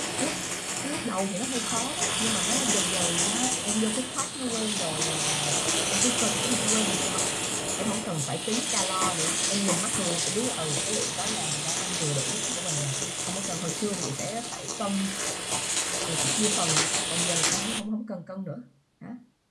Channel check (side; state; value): both; identical; correlation 1.00